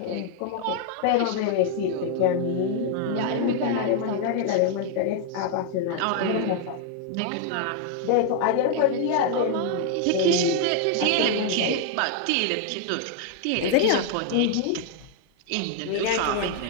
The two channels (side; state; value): both; different; correlation 0.00